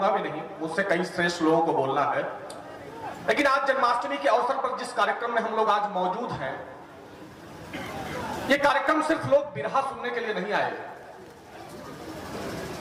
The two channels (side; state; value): both; identical; correlation 1.00